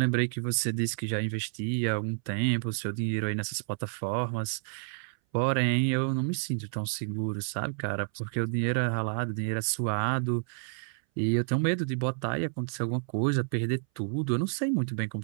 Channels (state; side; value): silent; left; 58 dB below the other